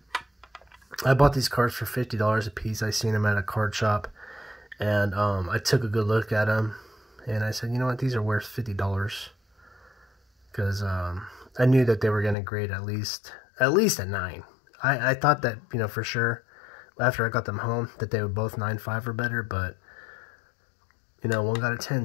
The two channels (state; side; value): drops out; right; at 12.4 s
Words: I bought these cards for $50 a piece. I seen them at a card shop, and I took a good look at them, and I said, you know what, these are worth $50, because I knew that they were gonna grade at least a 9. I thought that, for sure, after I got them home, that they would both 9.5 or better, but one got a